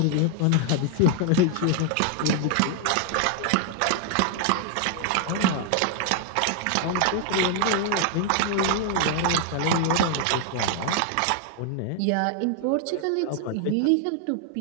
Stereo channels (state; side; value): different; both; correlation 0.00